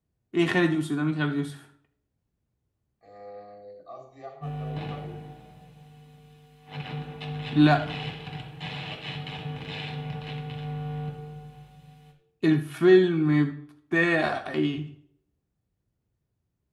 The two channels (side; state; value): both; identical; correlation 1.00